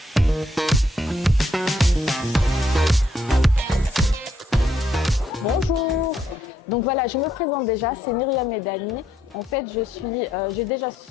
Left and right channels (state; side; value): normal; both; correlation 0.73